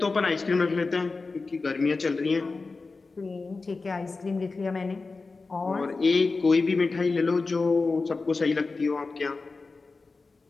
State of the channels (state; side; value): quieter; right; 3.9 dB